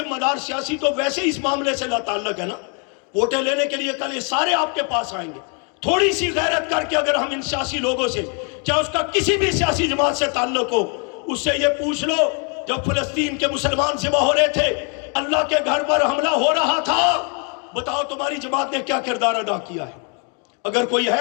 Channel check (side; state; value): right; quieter; 37.9 dB